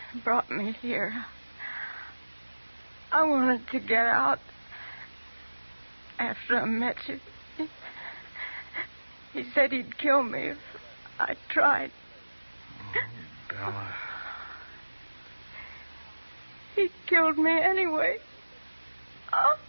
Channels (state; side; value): inverted; both; correlation -1.00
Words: He brought me here. I wanted to get out after I met you. He said he'd kill me if I tried. Oh, Bella. He killed me anyway.